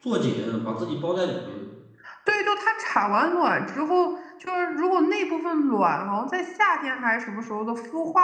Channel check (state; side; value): identical; both; correlation 1.00